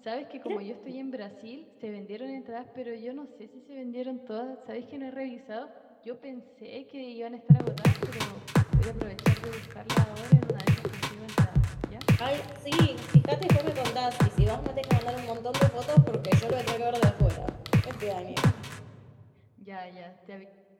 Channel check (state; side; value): identical; both; correlation 1.00